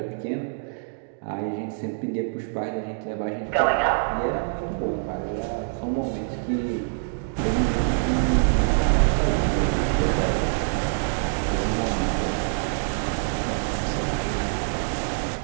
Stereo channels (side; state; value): left; silent; digital silence